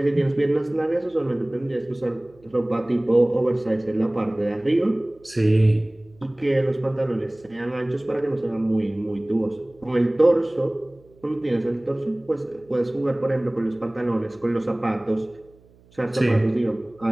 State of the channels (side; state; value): right; noise; hum, 29 dB below the sound